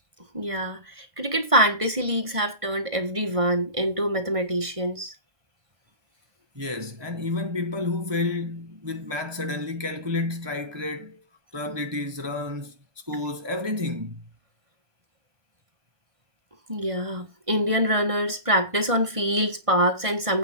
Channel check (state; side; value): late; left; 1.5 ms